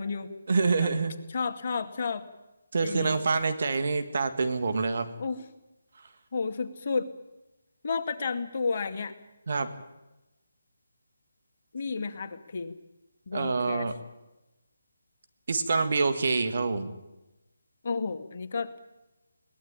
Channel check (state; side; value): inverted; both; correlation -0.86